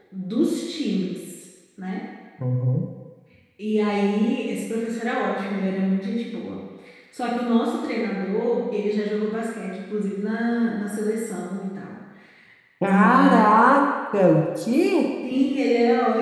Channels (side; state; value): both; identical; correlation 1.00